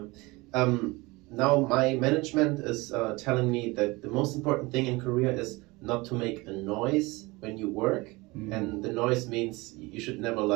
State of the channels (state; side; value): quieter; left; 23.3 dB